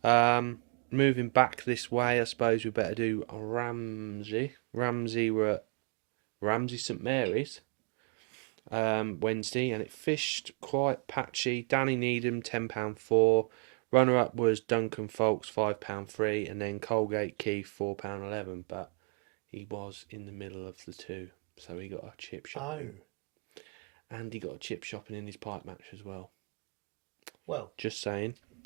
Moving back this way, I suppose we better do Ramsey. Ramsey were at Ramsey St Mary's Wednesday, and it fished quite patchy. Danny Needham £10.4. Runner up was Duncan Folks £5.3, and then Colgate Keith £4.11. But he was in the middle of the two, so he got a chip shop. Oh. And he got a chip shopping in his pipe match as well. Well, Just saying.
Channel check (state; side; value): quieter; left; 39.5 dB